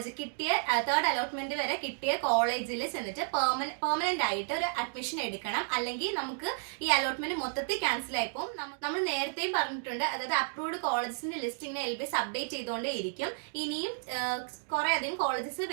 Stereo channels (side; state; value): left; silent; digital silence